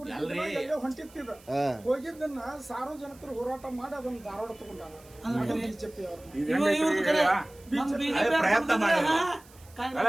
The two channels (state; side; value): noise; right; hiss, 25 dB below the sound